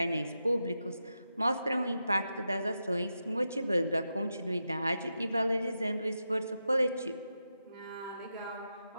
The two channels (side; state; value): both; inverted; correlation -0.88